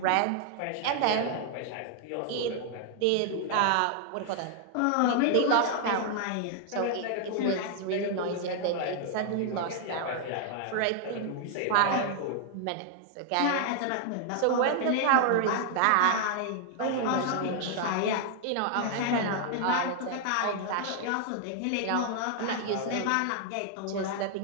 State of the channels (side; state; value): both; different; correlation 0.00